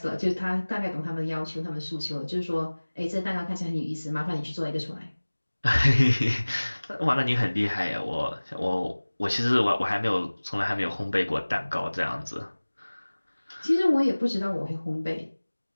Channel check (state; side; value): inverted; both; correlation -1.00